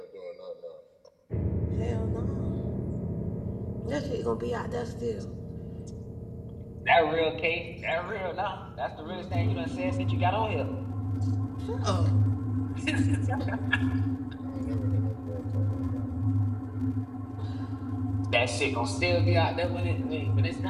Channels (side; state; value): both; identical; correlation 1.00